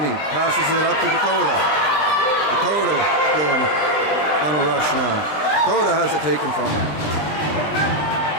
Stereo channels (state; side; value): late; right; 20 ms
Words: passes it up to Dakota. Dakota going on a rush now. Dakota has it taken from him.